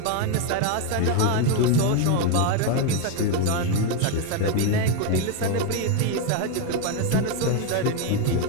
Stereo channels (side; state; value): both; different; correlation 0.02